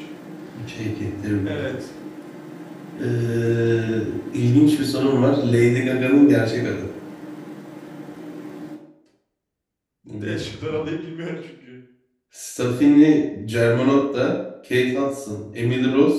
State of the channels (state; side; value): identical; both; correlation 1.00